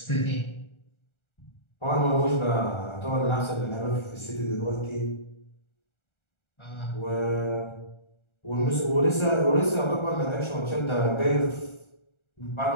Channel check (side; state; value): right; late; 1.4 ms